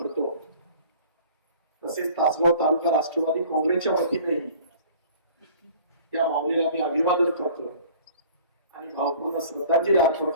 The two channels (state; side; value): inverted; both; correlation -0.48